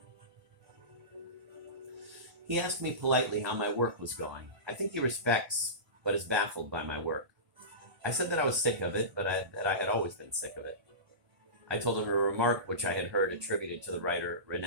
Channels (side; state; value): left; late; 1.3 ms